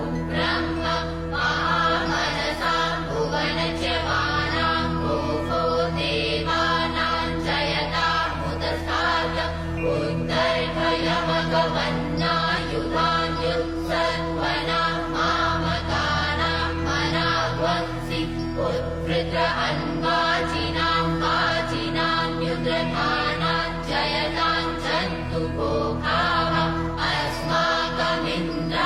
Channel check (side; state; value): both; identical; correlation 1.00